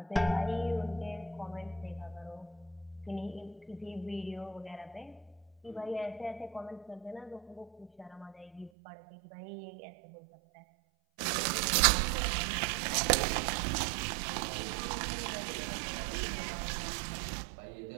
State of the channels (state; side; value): drops out; left; at 8.7 s